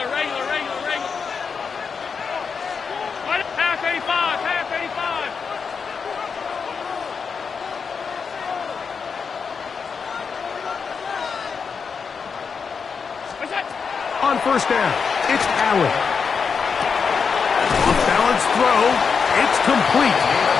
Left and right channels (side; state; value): right; quieter; 5.8 dB